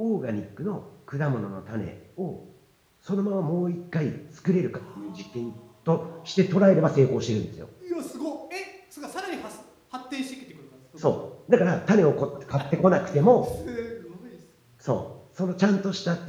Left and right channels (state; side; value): identical; both; correlation 1.00